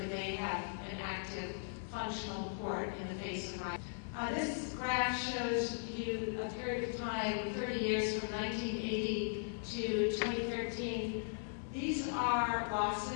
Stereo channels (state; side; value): silent; right; 52 dB below the other